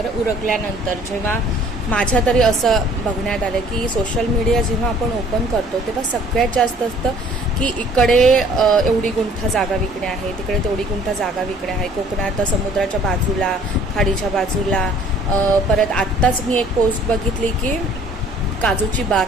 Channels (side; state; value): both; normal; correlation 0.55